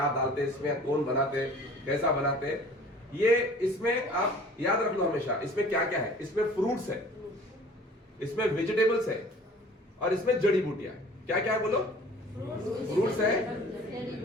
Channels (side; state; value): both; normal; correlation 0.48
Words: डालते इसमें, कौन बनाते, कैसा बनाते। ये इसमें आप याद रख लो हमेशा, इसमें क्या क्या है, इसमें फ्रूट्स है, इसमें वेजिटेबल्स है, और इसमें जड़ी बूटियां है। क्या क्या है बोलो? फ्रूट्स है,